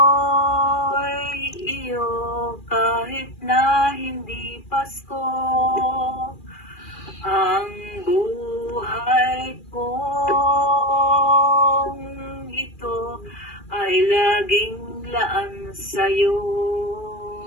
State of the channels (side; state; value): right; late; 2.4 ms